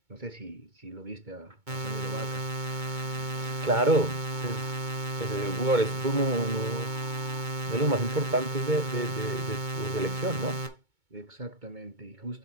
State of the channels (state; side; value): late; left; 2.2 ms